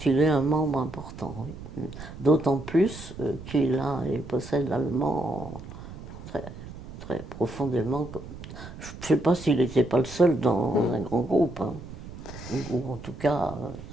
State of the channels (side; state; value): right; noise; rumble, 13 dB below the sound